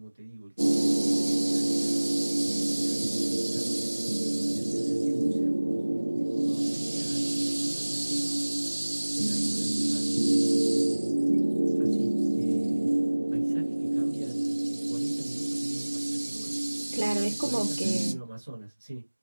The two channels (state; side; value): inverted; both; correlation -1.00